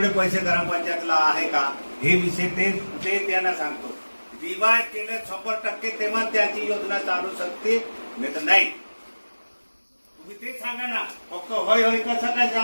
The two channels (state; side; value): inverted; both; correlation -1.00